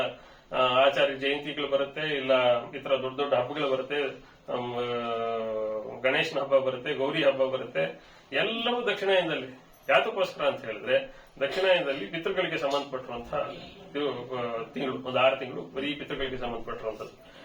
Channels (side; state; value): both; identical; correlation 1.00